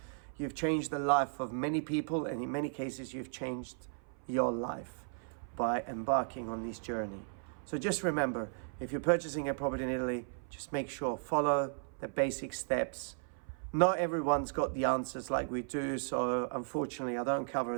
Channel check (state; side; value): silent; left; 54 dB below the other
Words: You've changed the life of many people, and in many cases you've changed your life by embarking on this journey. So just remember, if you're purchasing a property in Italy, just make sure, follow the basic steps. Not everyone's got the answers like we do, so unfortunately I don't cover